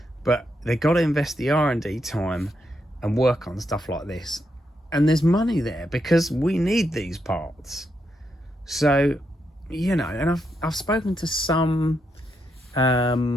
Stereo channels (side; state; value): both; normal; correlation 0.81